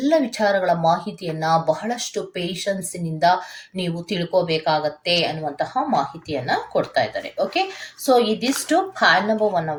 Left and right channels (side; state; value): both; identical; correlation 1.00